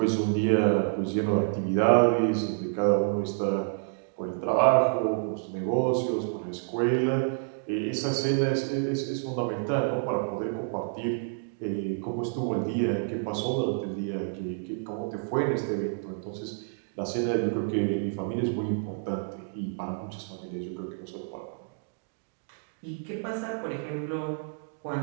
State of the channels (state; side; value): silent; left; digital silence